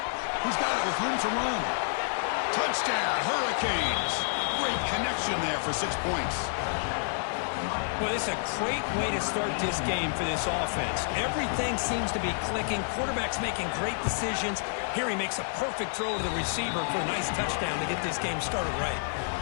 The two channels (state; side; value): silent; right; digital silence